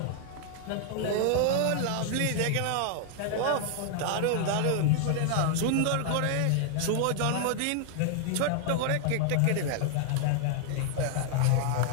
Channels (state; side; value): different; both; correlation 0.00